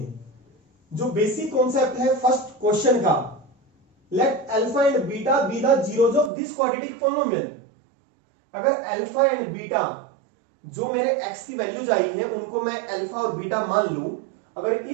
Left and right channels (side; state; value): left; drops out; at 6.3 s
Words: जो बेसिक कॉन्सेप्ट है फर्स्ट क्वेश्चन का, let alpha and beta be the zeros of this quadratic polynomial. अगर अल्फा एंड बीटा जो मेरे x की वैल्यूज आई है उनको मैं अल्फा और बीटा मान लूं, अगर